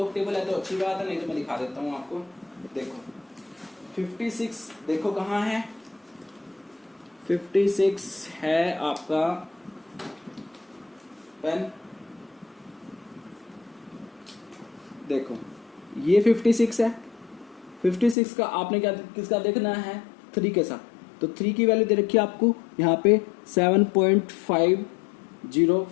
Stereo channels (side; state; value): right; drops out; at 18.2 s